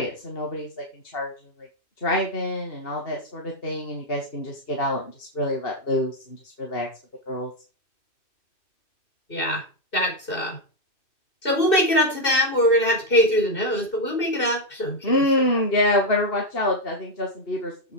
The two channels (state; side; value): late; right; 2.6 ms